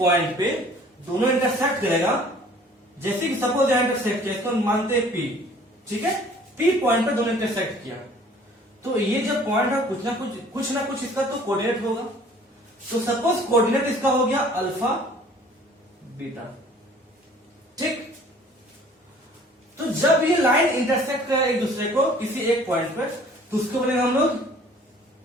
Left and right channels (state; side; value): normal; both; correlation 0.52